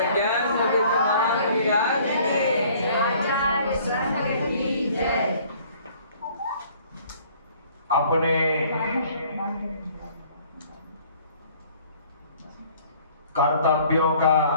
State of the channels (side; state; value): both; inverted; correlation -0.56